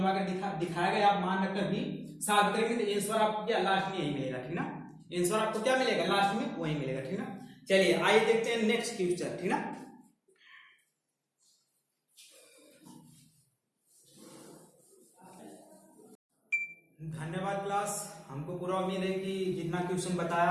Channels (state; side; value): identical; both; correlation 1.00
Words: कर दिखाएगा, आप मान रखकर भी सॉल्व करेंगे तो आंसर आपको क्या लास्ट में यही मिलेगा, ठीक ना, आंसर आपको क्या मिलेगा लास्ट में वही मिलेगा, ठीक ना। चलिए आइए देखते हैं नेक्स्ट क्वेश्चन, ठीक ना। धन्यवाद क्लास, हमको पूरा उम्मीद है कि जितना क्वेश्चन